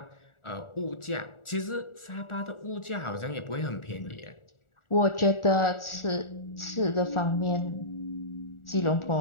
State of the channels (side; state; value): right; late; 1.4 ms